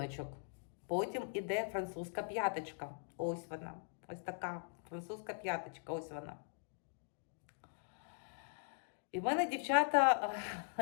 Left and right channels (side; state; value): right; silent; digital silence